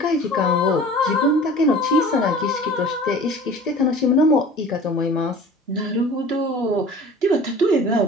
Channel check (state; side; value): normal; both; correlation 0.43